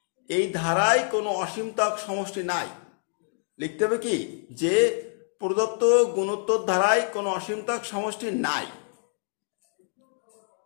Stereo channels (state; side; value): silent; right; 60 dB below the other